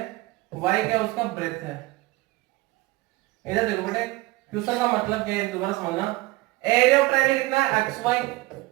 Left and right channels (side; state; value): left; quieter; 20.8 dB